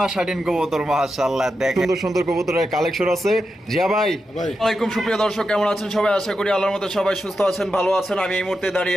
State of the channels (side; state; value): both; normal; correlation 0.88